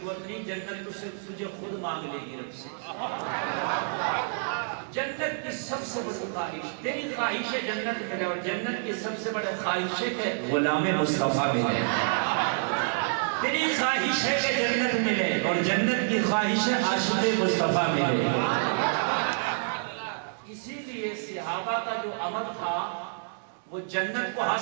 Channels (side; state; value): left; silent; digital silence